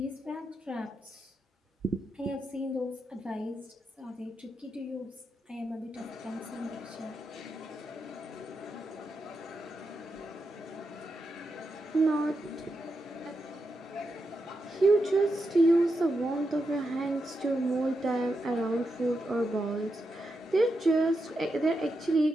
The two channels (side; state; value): both; normal; correlation 0.86